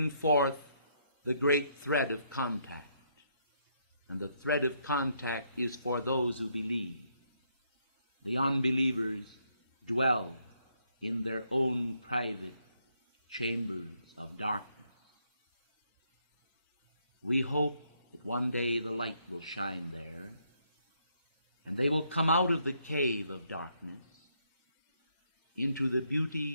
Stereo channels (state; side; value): inverted; both; correlation -0.73